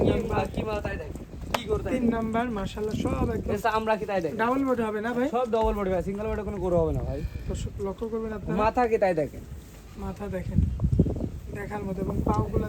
নাম্বার কি মাল তাই দেখেন, কি গরু তাই তিন নাম্বার মাশাআল্লাহ সব একদম দেখেন, আমরা কি তাই দেখেন, ডাবল বডি হবে না ভাই? সব ডবল বডি ভাই, সিঙ্গেল বডি কোনো গরু হবে না ভাই। দর্শক লক্ষ্য করবেন আপনারা, মাথা কি তাই দেখেন, মাথা দেখেন দেখার মতো এবং পাগুলো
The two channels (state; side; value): identical; both; correlation 1.00